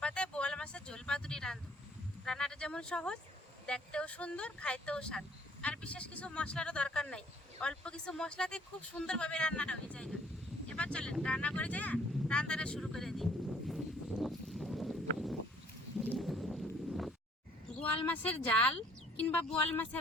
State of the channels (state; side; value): normal; both; correlation 0.61